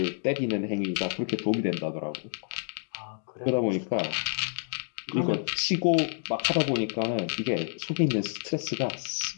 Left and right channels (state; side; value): silent; right; 59 dB below the other